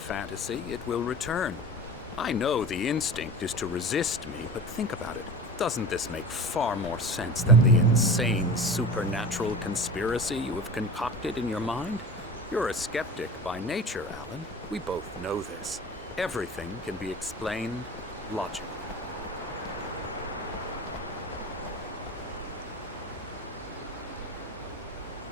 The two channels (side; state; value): both; normal; correlation 0.35